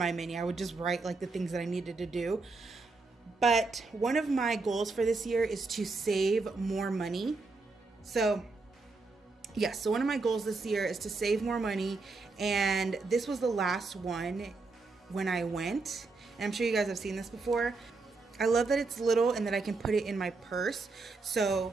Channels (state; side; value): quieter; left; 3.8 dB